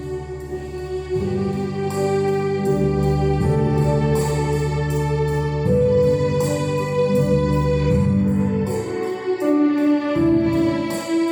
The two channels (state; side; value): identical; both; correlation 1.00